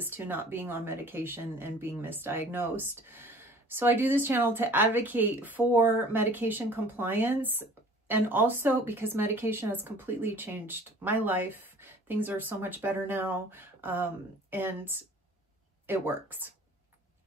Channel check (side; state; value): both; normal; correlation 0.49